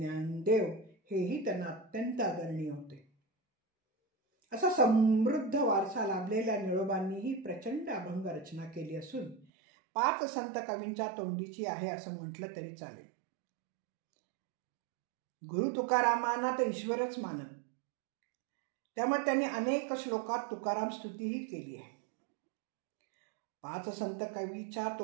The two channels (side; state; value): left; drops out; at 9.5 s